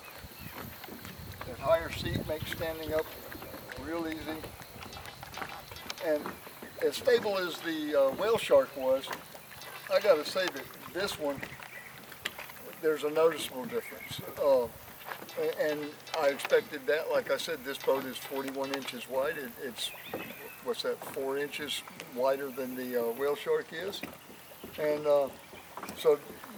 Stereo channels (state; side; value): identical; both; correlation 1.00